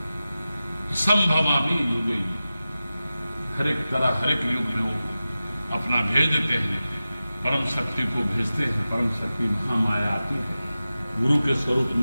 संभवामी युगे, हर एक तरह हर एक युग में वो अपना भेज देते हैं, परम शक्ति को भेजते हैं। परम शक्ति महामाया आती है, गुरु के स्वरूप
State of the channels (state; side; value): inverted; both; correlation -0.95